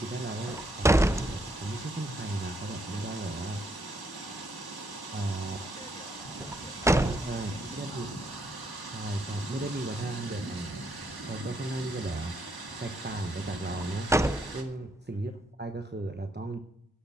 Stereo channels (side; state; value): both; normal; correlation 0.74